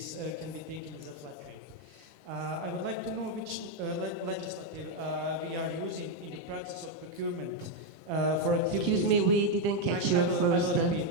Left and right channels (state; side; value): normal; both; correlation 0.03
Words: can be taken as a flat rate. I would like to know which legislative we are using in the process of procurement for activities. Excuse me, we didn't catch your first.